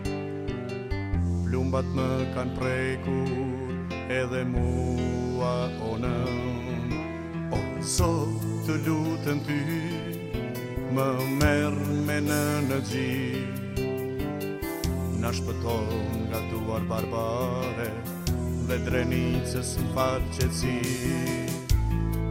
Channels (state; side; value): identical; both; correlation 1.00